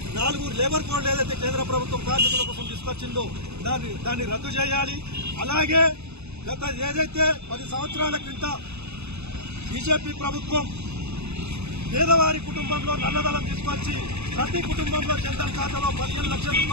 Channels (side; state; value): left; late; 0.80 ms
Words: 4 లేబర్ కోడ్లు ఏదైతే కేంద్ర ప్రభుత్వం కార్మికుల కోసం తీసుకొచ్చిందో దాన్ని రద్దు చేయాలి. అలాగే గత ఏదైతే 10 సంవత్సరాల క్రింద బీజేపీ ప్రభుత్వం పేదవారి కుటుంబంలో నల్లధనం తీసుకొచ్చి ప్రతి కుటుంబంలో జన్ధన్ ఖాతాలో 15 లక్షల